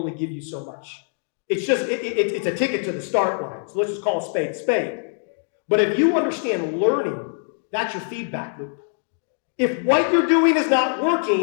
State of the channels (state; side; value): silent; right; 60 dB below the other